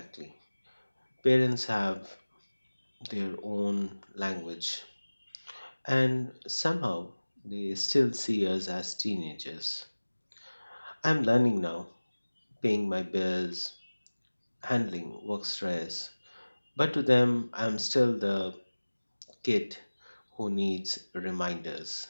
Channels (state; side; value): inverted; both; correlation -1.00